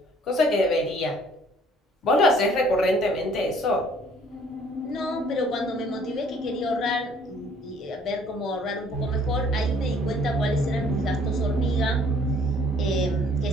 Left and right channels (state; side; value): normal; both; correlation 0.59